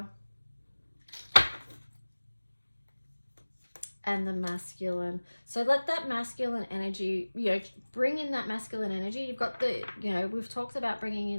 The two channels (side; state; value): both; inverted; correlation -1.00